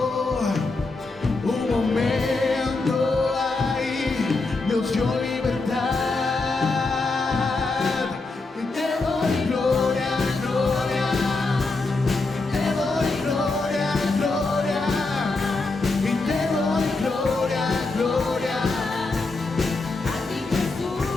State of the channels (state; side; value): quieter; right; 3.5 dB